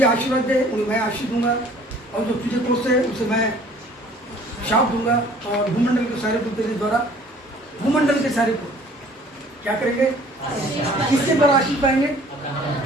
आशीर्वाद दे उन्हें मैं आशीष दूंगा और जो तुझे कोसे उसे मैं शाप दूंगा, और भूमंडल के सारे को तेरे द्वारा, भूमंडल के सारे को क्या करेंगे, किसके द्वारा आशीष पाएंगे,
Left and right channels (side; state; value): both; normal; correlation 0.53